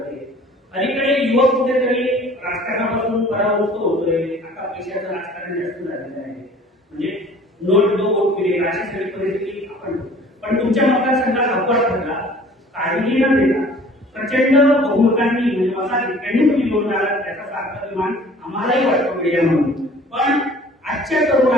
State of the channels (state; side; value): normal; both; correlation 0.50